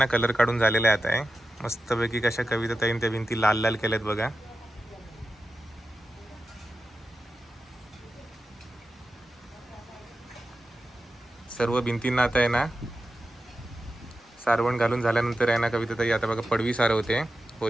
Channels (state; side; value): normal; both; correlation 0.91